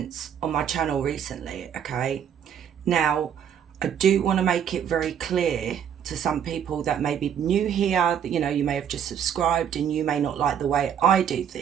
on my channel recently, okay? Now, I do want to make it very clear to some people that may be new here, that, you know, you may have just subscribed and you may not like the way I do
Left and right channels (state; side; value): quieter; left; 8.7 dB